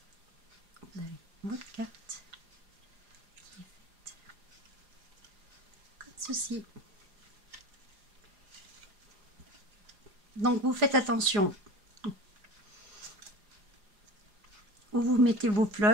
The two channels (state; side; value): late; left; 4.9 ms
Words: vous avez votre carte qui est faite comme ceci. Donc vous faites attention où vous mettez vos